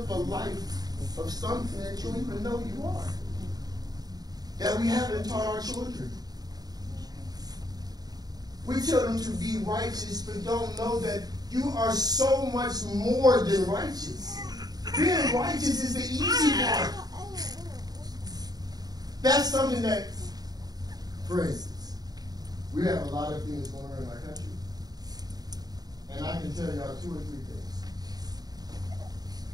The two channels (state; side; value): late; left; 0.19 ms